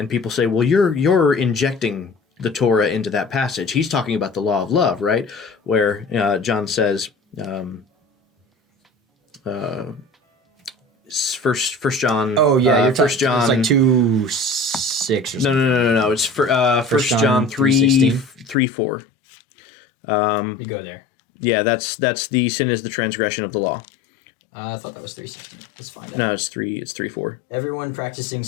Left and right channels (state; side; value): drops out; right; at 18.6 s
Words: people say, well, you're injecting the Torah into that passage. He's talking about the law of love, right? Where John says. First John. Oh yeah, First John. It's like 2:6 or something. No. It's First John 3:4. Let me go there. Yeah, that's the sin is the transgression of the law. I thought that was 3:16. Let's find out. No, it's 3:4. Everyone practicing